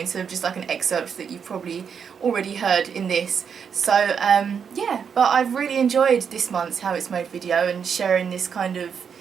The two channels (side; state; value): left; quieter; 6.9 dB